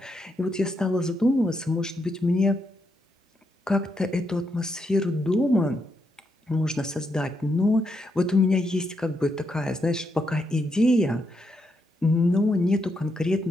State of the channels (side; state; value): both; normal; correlation 0.80